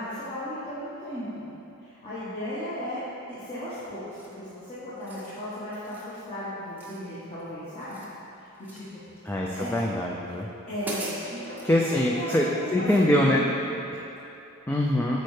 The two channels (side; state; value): both; normal; correlation 0.62